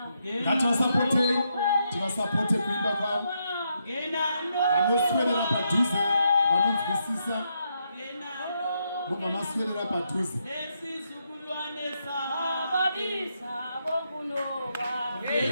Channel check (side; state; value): both; inverted; correlation -0.80